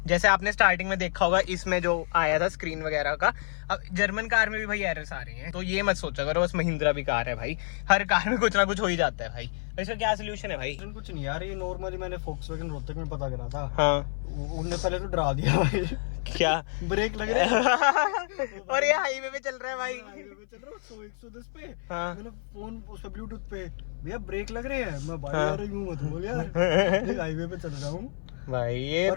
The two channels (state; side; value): silent; right; 56 dB below the other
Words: जैसे आपने स्टार्टिंग में देखा होगा इसमें जो आया था स्क्रीन वगैरह का, अब जर्मन कार में भी भाई एरर्स आ रही हैं। तो ये मत सोचा करो बस महिंद्रा भी कार है भाई, हर कार में कुछ ना कुछ हो ही जाता है भाई। तो इसका क्या सोल्यूशन है भाई? कुछ नहीं यार, ये नॉर्मली मैंने फोक्सवैगन रोहतक में पता करा था। हाँ, उनने पहले तो डरा दिया भाई। क्या ब्रेक लग रहे हैं। और ये हाईवे पे चल रहा है भाई। हाईवे पे चल रहा हूँ 100-110 पे। हाँ। मैंने फोन उस पे ब्लूटूथ पे, भैया ब्रेक लग रहे हैं। मैं भाई हाँ। यार यूं मत बोल यार, हाईवे पे चल रहा हूँ भाई ये